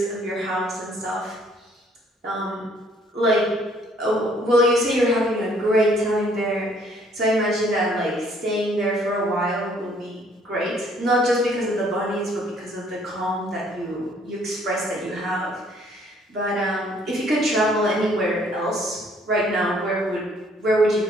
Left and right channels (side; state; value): both; normal; correlation 0.62